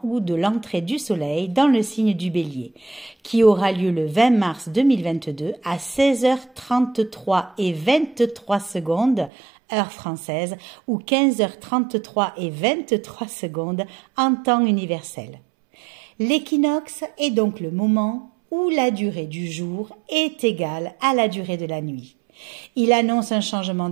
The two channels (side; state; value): left; drops out; at 9.3 s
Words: ou de l'entrée du soleil dans le signe du Bélier, qui aura lieu le 20 mars 2022 à 16h33 et 23 secondes, heure française, ou 15h33 et 23 secondes en temps universel. L'équinoxe est donc le moment où la durée du jour est égale à la durée de la nuit. Il annonce un changement